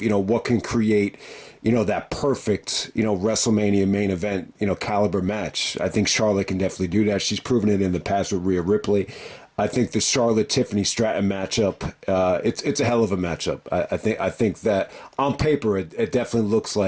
can create that perfect, WrestleMania main event, caliber match. I think Charlotte can definitely do that. She's proven it in the past with Rhea Ripley. I think the Charlotte-Tiffany Stratton matchup, it's a hell of a matchup. I think that on paper, it definitely looks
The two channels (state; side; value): identical; both; correlation 1.00